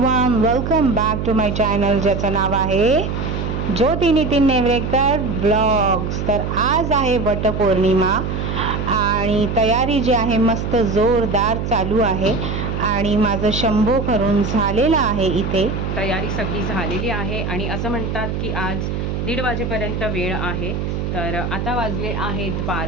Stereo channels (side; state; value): right; noise; hum, 3 dB below the sound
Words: welcome back to my channel ज्याचं नाव आहे ज्योती नितीन नेवरेकर ब्लॉग्स। तर आज आहे वटपौर्णिमा आणि तयारी जी आहे मस्त जोरदार चालू आहे आणि माझं शंभो करून झालेला आहे। इथे तयारी सगळी झालेली आहे आणि असं म्हणतात की आज 1:30 वाजेपर्यंत वेळ आहे। तर आता वाजले आहेत